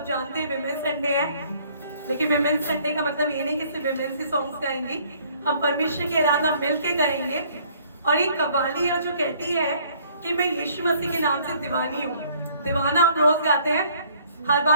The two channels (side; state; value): both; inverted; correlation -0.60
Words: जानते हैं विमेन संडे है, लेकिन विमेन संडे का मतलब ये नहीं कि सिर्फ विमेन से सॉन्ग्स गाएंगे, हम परमेश्वर की आराधना मिलके करेंगे। और एक कव्वाली है जो कहती है कि मैं यीशु मसीह के नाम से दीवानी हूँ। दीवाना हम रोज गाते हैं, हर